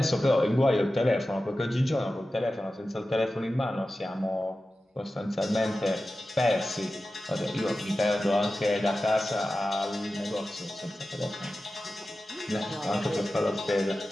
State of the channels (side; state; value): both; normal; correlation 0.94